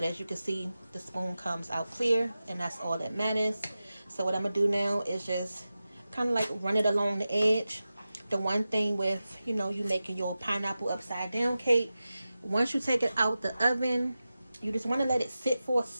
as you can see, the spoon comes out clear, and that's all that matters. So what I'm gonna do now is just kind of like run it along the edge. The one thing with, you know, you making your pineapple upside down cake, once you take it out the oven, you just want to let it sit for a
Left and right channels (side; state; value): both; inverted; correlation -0.94